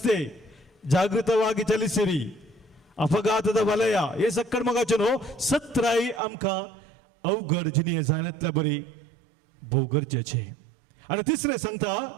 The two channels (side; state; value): left; drops out; at 6.2 s